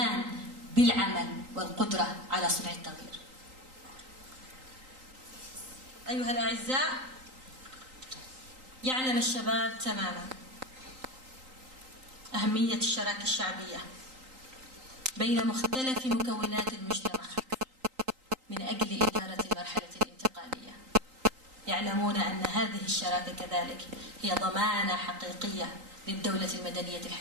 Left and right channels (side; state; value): left; late; 3.8 ms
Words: بالعمل والقدرة على صنع التغيير. أيها الأعزاء، يعلم الشباب تماما أهمية الشراكة الشعبية بين مختلف مكونات المجتمع من أجل إدارة المرحلة الانتقالية. يعلمون أن هذه الشراكة كذلك هي ضمانة حقيقية للدولة المدنية